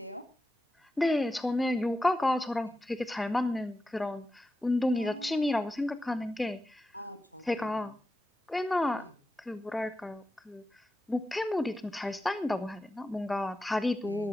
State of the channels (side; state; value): both; normal; correlation 0.92